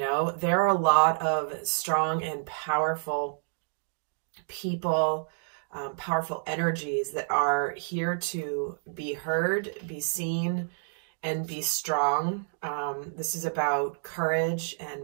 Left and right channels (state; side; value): silent; left; digital silence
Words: there are a lot of strong and powerful people, powerful energies that are here to be heard, be seen, and be strong. This is about courage